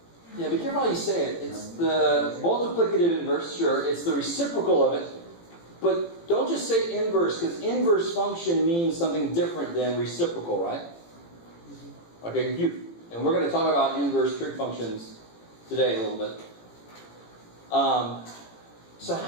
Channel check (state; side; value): late; right; 18 ms